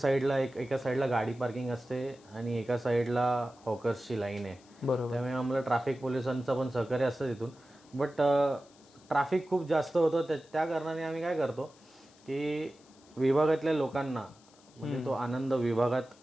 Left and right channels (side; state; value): left; noise; hiss, 28 dB below the sound